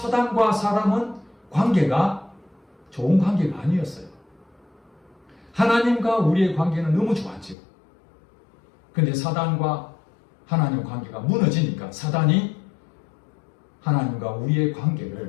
사람은 관계가 좋은 관계가 아니었어요. 하나님과 우리의 관계는 너무 좋았죠. 근데 사단과 하나님 관계가 무너지니까 사단이 하나님과 우리의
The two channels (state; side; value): drops out; right; at 7.6 s